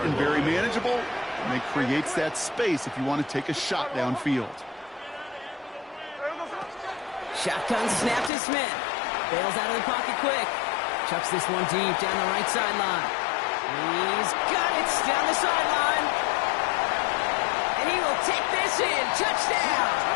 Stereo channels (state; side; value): drops out; right; at 8.3 s